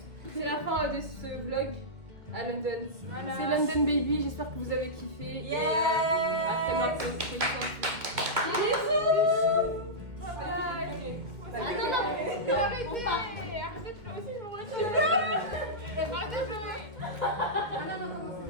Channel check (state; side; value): late; left; 2.1 ms